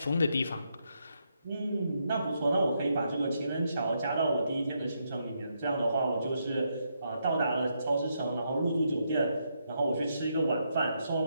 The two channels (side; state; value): both; inverted; correlation -0.79